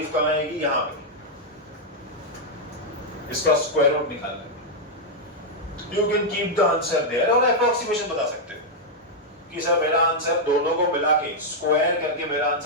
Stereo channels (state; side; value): normal; both; correlation -0.03